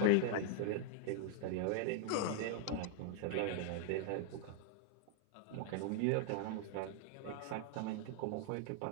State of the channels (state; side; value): different; both; correlation -0.01